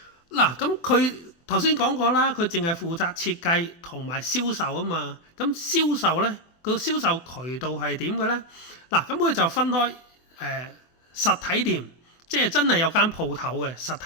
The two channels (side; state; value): right; late; 24 ms